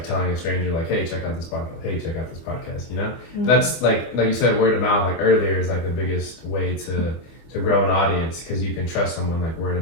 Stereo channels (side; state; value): right; late; 24 ms